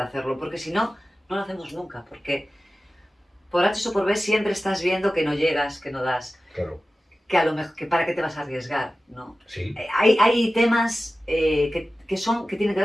hacerlo, porque si no, no lo hacemos nunca, porque por H o por B siempre estás viendo que no llegas, que no das. Claro. Que a lo mejor, que para qué te vas a arriesgar, ¿no? Sí. Hay temas que tienen que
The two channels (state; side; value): normal; both; correlation 0.95